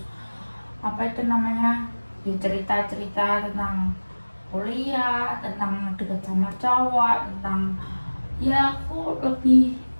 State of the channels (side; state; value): both; inverted; correlation -1.00